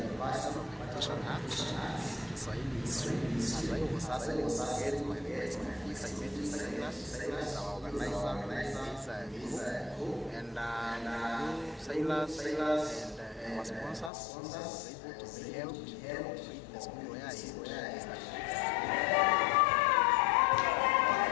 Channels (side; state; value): right; drops out; at 14.1 s